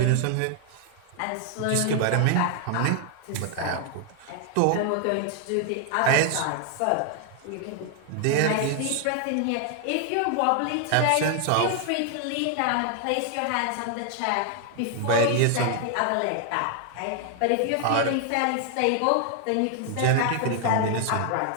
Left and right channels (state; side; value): different; both; correlation 0.00